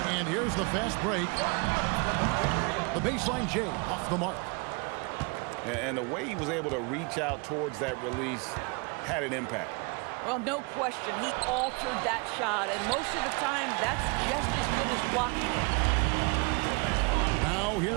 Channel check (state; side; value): quieter; left; 31.1 dB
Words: And here's the fast break. The baseline J off the mark. And the way he was able to reach out towards that release had an impact. Well, no question. He altered that shot, and most of the time, that's just as good as blocking it. Now